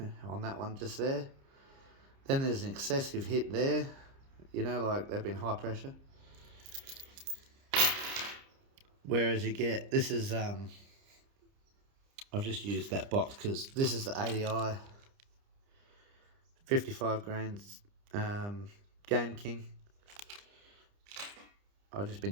on that one just there. Then there's an excessive hit there. You know, like, they've been high pressure. Whereas you get, this is, I've just used that box because this is the ADI 55 grains Game King. I've just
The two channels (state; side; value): late; left; 30 ms